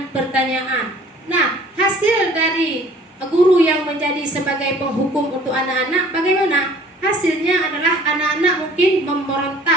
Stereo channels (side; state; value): both; normal; correlation 0.52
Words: Nah, hasil dari guru yang menjadi sebagai penghukum untuk anak-anak bagaimana? Hasilnya adalah anak-anak mungkin